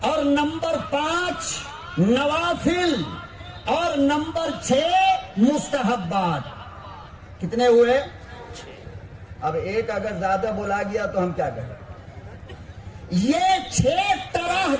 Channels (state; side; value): identical; both; correlation 1.00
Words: اور نمبر 5 نوافل، اور نمبر 6 مستحبات۔ کتنے ہوئے؟ اب ایک اگر زیادہ بولا گیا تو ہم کیا کریں؟ یہ 6 طرح